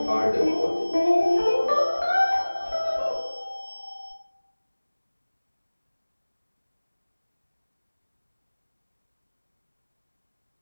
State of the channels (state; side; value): inverted; both; correlation -1.00